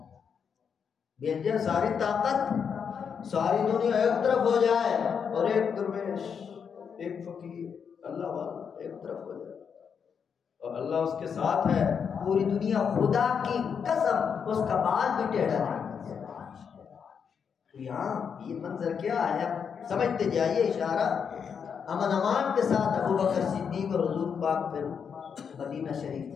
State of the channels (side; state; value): right; quieter; 6.8 dB